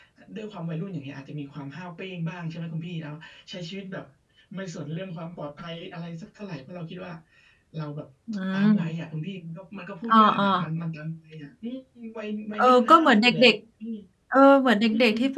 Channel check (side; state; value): both; identical; correlation 1.00